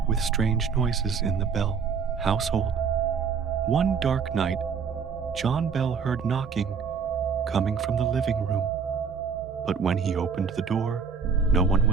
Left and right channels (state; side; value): quieter; left; 6.1 dB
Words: with strange noises in the Bell household. One dark night, John Bell heard knocking coming from the living room, but when he opened the door, no one